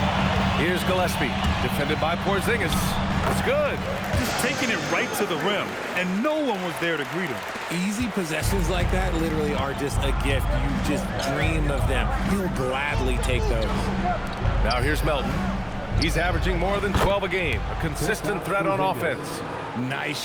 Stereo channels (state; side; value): identical; both; correlation 1.00